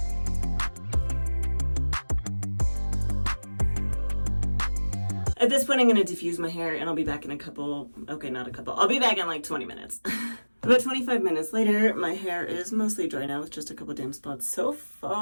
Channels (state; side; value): inverted; both; correlation -1.00